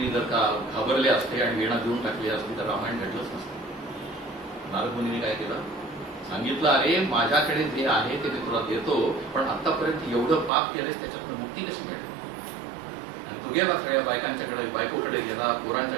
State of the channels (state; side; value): drops out; left; at 10.5 s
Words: जर का घाबरले असते आणि वीणा देऊन टाकली असती तर रामायण घडलंच नसतं. नारद मुनींनी काय केलं? सांगितलं अरे माझ्याकडे जे आहे ते मी तुला देतो, पण आतापर्यंत एवढं पाप केलेस त्याच्यातून मुक्ती कशी मिळेल? तो गेला सगळ्या बायकांच्याकडे, बायकोकडे गेला,